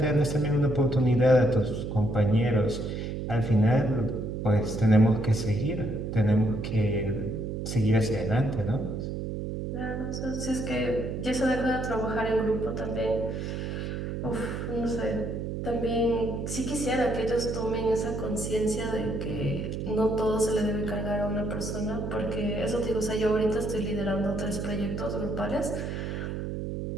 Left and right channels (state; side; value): noise; right; hum, 4 dB below the sound